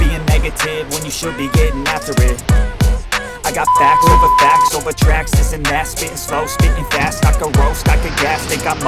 being negative when you should be getting after it. I got facts over tracks, this and that. Spitting slow, spitting fast, I can roast, I can gas. Think I'm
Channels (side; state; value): both; identical; correlation 1.00